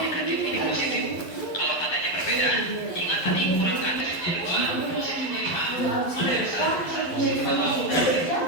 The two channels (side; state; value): right; late; 11 ms